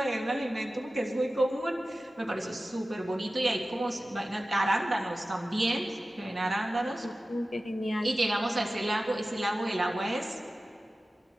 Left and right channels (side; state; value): both; normal; correlation 0.95